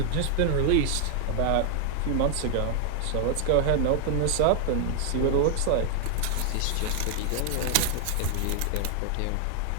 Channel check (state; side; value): different; both; correlation 0.00